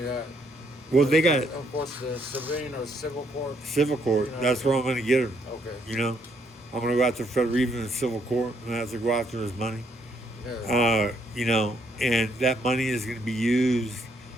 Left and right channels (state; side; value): normal; both; correlation 0.71